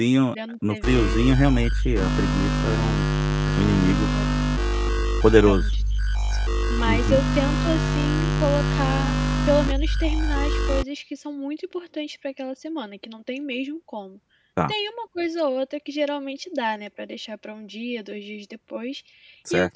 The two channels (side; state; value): both; identical; correlation 1.00